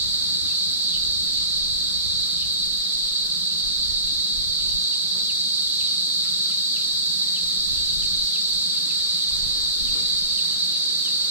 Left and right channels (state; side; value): inverted; both; correlation -0.38